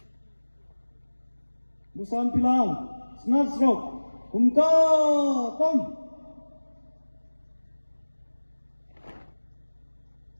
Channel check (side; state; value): both; inverted; correlation -1.00